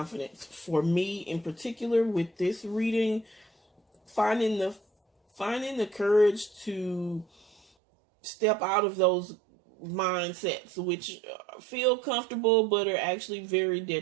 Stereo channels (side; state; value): left; drops out; at 7.6 s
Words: For me in particular, with this reading, finding the courage to step out of those mindsets which feel comfortable but are actually very